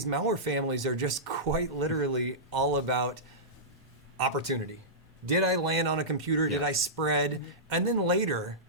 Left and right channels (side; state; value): both; normal; correlation -0.15